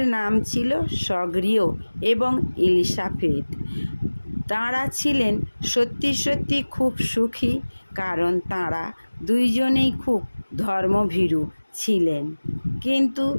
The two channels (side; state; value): both; inverted; correlation -1.00